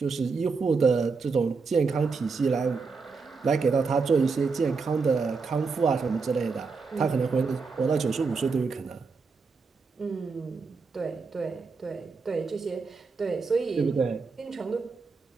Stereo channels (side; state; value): left; quieter; 4.7 dB